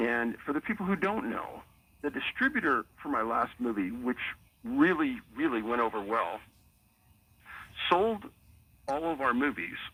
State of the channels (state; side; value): identical; both; correlation 1.00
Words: for the people who don't know, the distributor for my last movie, which really, really went over well, sold all of our movies